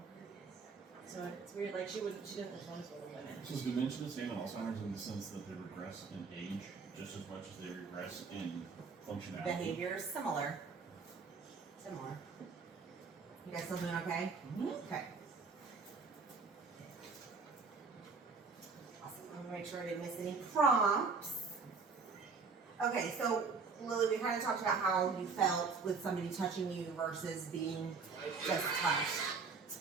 So it's weird, like she doesn't homeschool the women. So is dementia the same in Alzheimer's in the sense that they regress in age just as much as they regress in functionality? Behaviors similar. Similar. You guys still doing okay? Okay. Awesome. I'm gonna make sure I didn't miss any prompts. Okay, so Lily, we kind of talked about how you felt with somebody touching you versus being just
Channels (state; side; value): quieter; left; 4.9 dB